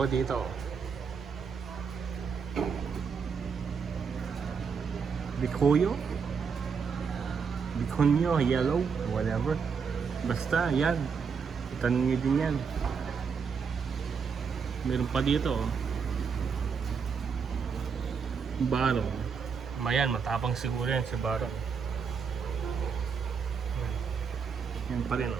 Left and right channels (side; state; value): left; quieter; 6.0 dB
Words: dito. Bikuyo? Bikunyo, yellow, whatever. Basta, yan. Itanim nyo din yan. Meron pa dito. Barong. Mayan, matapang siguro yan si Barong. Yan pa rin,